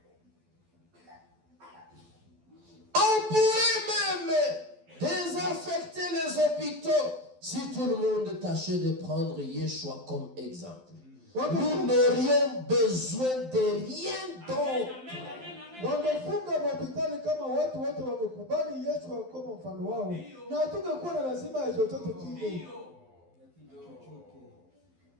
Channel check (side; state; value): left; late; 12 ms